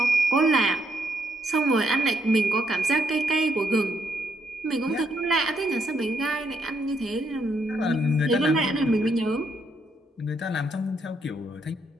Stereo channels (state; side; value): normal; both; correlation 0.75